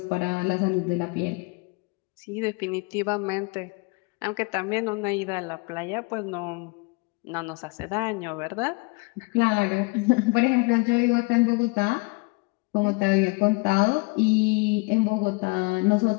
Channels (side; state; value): right; quieter; 28.8 dB